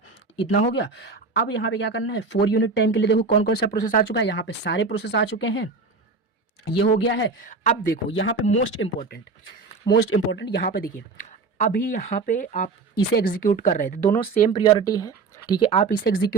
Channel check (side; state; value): left; quieter; 4.2 dB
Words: इतना हो गया। अब यहाँ पे क्या करना है, 4 यूनिट टाइम के लिए देखो कौन कौन सा प्रोसेस आ चुका है, यहाँ पे सारे प्रोसेस आ चुके हैं, ये हो गया है। अब देखो यहाँ पे मोस्ट इंपॉर्टेंट मोस्ट इंपॉर्टेंट यहाँ पे देखिए, अभी यहाँ पे आप इसे एग्जीक्यूट कर रहे थे, दोनों सेम प्रियोरिटी है, ठीक है, आप इसे